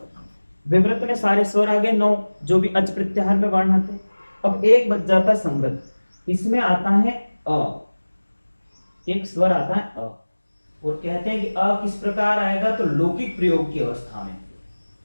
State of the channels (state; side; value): inverted; both; correlation -1.00